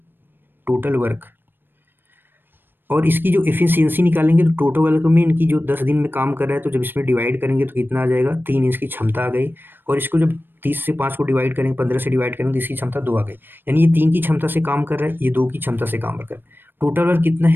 टोटल वर्क। और इसकी जो एफिशिएंसी निकालेंगे तो टोटल वर्क में इनकी जो 10 दिन में काम कर रहा है, तो जब इसमें डिवाइड करेंगे तो कितना आ जाएगा, 3 इसकी क्षमता आ गई। और इसको जब 30 से 5 को डिवाइड करेंगे, 15 से डिवाइड करेंगे तो इसकी क्षमता 2 आ गई। यानी ये 3 की क्षमता से काम कर रहा है, ये 2 की क्षमता से काम कर रहा है। टोटल वर्क कितना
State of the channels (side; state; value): left; late; 0.096 ms